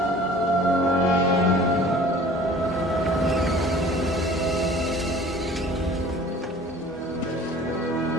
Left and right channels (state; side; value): normal; both; correlation 0.47